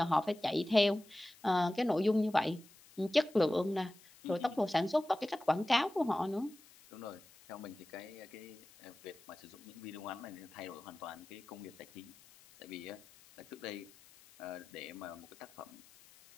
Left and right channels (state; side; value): noise; left; hiss, 24 dB below the sound